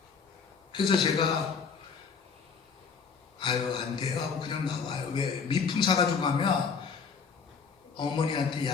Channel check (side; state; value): right; quieter; 5.8 dB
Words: 그래서 제가 아유 안 돼요 하고 그냥 나와요. 왜? 미풍 사가지고 가면 어머니한테